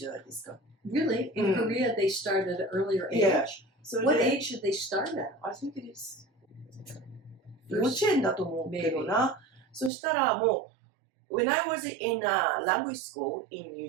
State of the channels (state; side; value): drops out; left; at 9.9 s